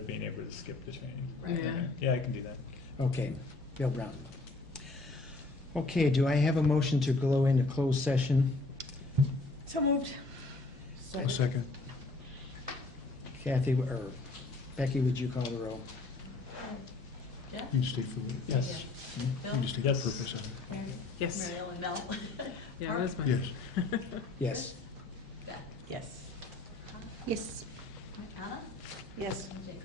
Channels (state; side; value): quieter; right; 3.3 dB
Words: being able to skip the training. Right. Yeah. Yeah, I can do that. Okay, Bill Brown. Okay, do I have a motion to go into closed session? So moved. A second. Kathy, or Becky, would you call the roll? Jeff? You state for it. Yes. Bill? You just state the Yes. purpose of it. Mary? Yes. Mary Ellen Bell? Yeah, that's my. Yes. Yes. Beth? Yes. Yes. Anna? Yes. And Jacob?